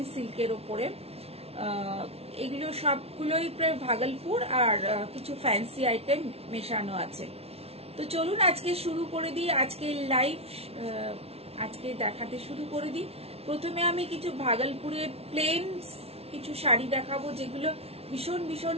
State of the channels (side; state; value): left; late; 0.30 ms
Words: সিল্কের ওপরে। এগুলো সবগুলোই প্রায় ভাগলপুর আর কিছু ফ্যান্সি আইটেম মেশানো আছে। তো চলুন আজকে শুরু করে দিই, আজকে লাইভ আজকে দেখাতে শুরু করে দিই। প্রথমে আমি কিছু ভাগলপুরের প্লেন কিছু শাড়ি দেখাবো, যেগুলো ভীষণ ভীষণ